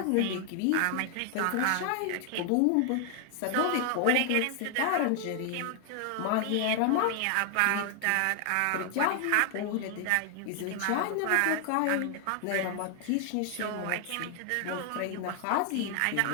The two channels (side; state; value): both; different; correlation 0.00